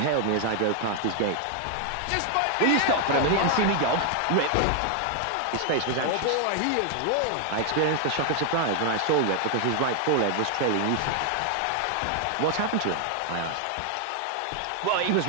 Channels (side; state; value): both; different; correlation 0.00